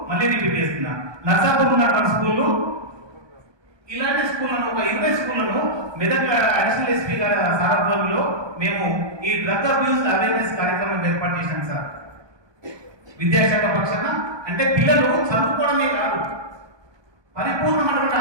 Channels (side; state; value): left; late; 1.2 ms